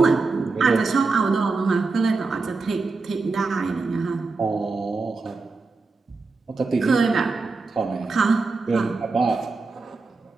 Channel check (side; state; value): left; quieter; 4.0 dB